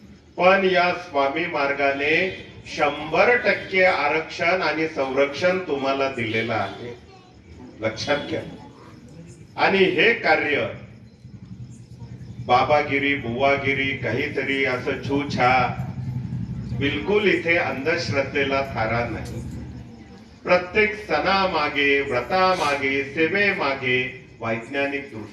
पण या स्वामी मार्गाने 100% आरक्षण आणि संरक्षण तुम्हाला दिलेलं आहे, लक्षात घ्या। आणि हे कार्य बाबागिरी बुवागिरी काहीतरी असं छूछा, बिलकुल इथे अंधश्रद्धेला थारा नाही। प्रत्येक सणामागे, व्रतामागे, सेवेमागे वैज्ञानिक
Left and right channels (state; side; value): identical; both; correlation 1.00